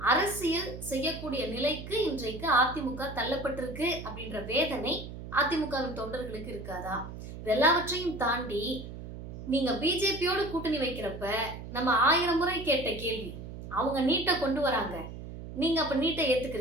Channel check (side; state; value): right; noise; hum, 11 dB below the sound